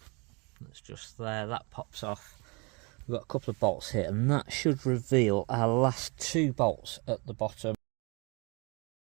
That's just there, that pops off. We've got a couple of bolts here and that should reveal our last two bolts at the bottom.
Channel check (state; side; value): quieter; left; 29.9 dB